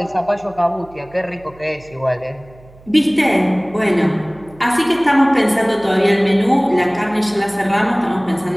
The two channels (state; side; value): noise; right; hum, 24 dB below the sound